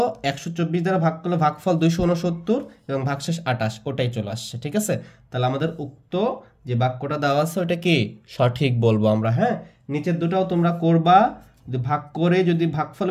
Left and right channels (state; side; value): identical; both; correlation 1.00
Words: 124 দ্বারা ভাগ করলো, ভাগফল 269 এবং ভাগশেষ 28, ওটাই চলে আসছে। ঠিক আছে, তাহলে আমাদের উক্ত যে বাক্যটা দেওয়া আছে ওটা কি সঠিক বলবো আমরা। হ্যাঁ, নিচের দুটাও তোমরা করবা, যদি ভাগ করে যদি ভাগফল